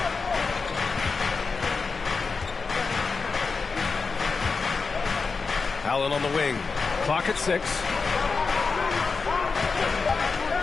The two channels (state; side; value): quieter; right; 4.7 dB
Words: Allen on the wing. Clock at 6.